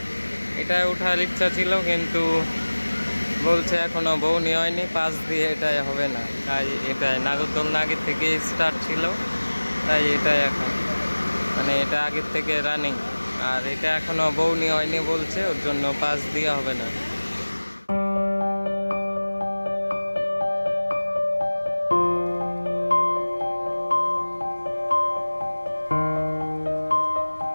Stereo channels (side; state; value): both; inverted; correlation -1.00